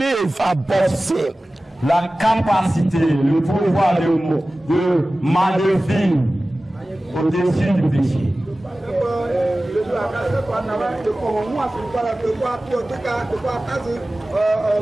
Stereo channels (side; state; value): both; normal; correlation 0.97